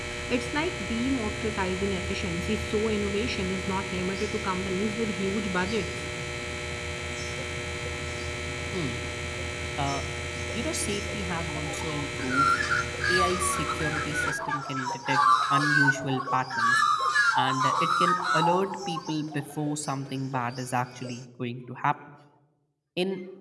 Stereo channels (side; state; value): both; identical; correlation 1.00